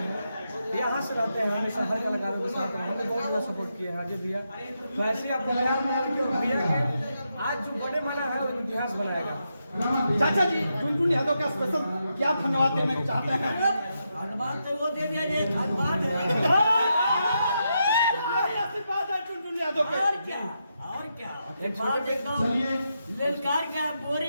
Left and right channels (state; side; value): inverted; both; correlation -0.84